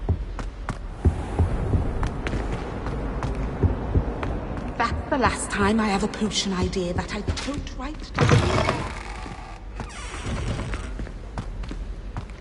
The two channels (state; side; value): identical; both; correlation 1.00